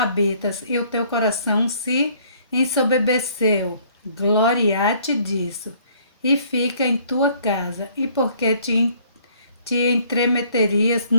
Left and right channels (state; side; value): inverted; both; correlation -0.60